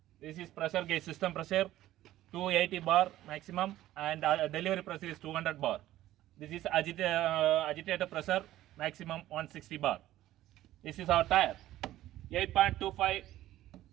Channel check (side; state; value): left; quieter; 14.4 dB